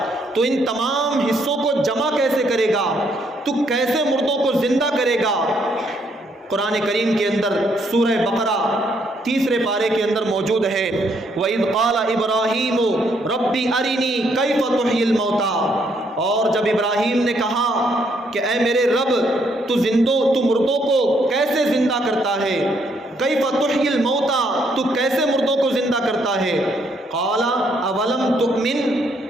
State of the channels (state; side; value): normal; both; correlation 0.71